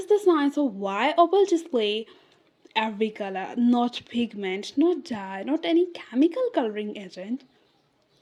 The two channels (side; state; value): both; identical; correlation 1.00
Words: the science of why opal display every color, not pigment, not dye, not any chemical coloring agent,